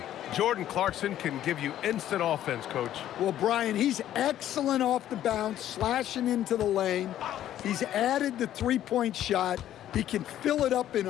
Jordan Clarkson can give you instant offense, Coach. Well, Brian, he's excellent off the bounce, slashing into the lane. He's added the three-point shot. He can fill it up in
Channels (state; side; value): quieter; right; 12.0 dB